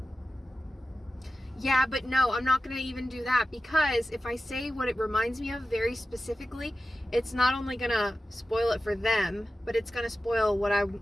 Yeah, but no, I'm not going to even do that, because if I say what it reminds me of very specifically, it's not only going to spoil it for them, but it's going to spoil what I'm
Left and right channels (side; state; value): both; normal; correlation 0.93